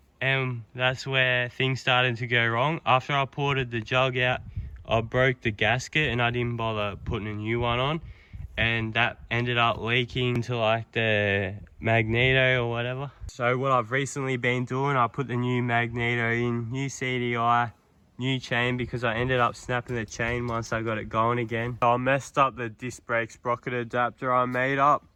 and that's where things started to go wrong. After I ported the jug out, I broke the gasket and I didn't bother putting a new one on, and that ended up leaking to like the magneto or whatever. So what I've recently been doing, I put the new magneto in, new CDI, new chain, because I ended up snapping the chain once I got it going again. So I messed up the disc brake sprocket adapter I made up.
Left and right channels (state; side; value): identical; both; correlation 1.00